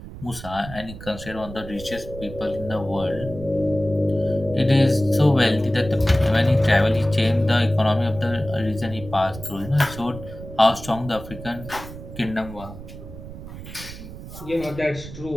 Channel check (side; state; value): right; noise; rumble, 13 dB below the sound